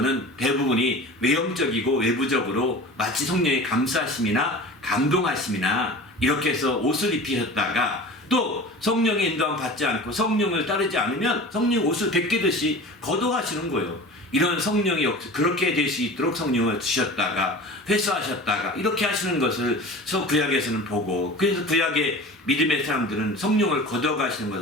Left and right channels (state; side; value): normal; both; correlation 0.37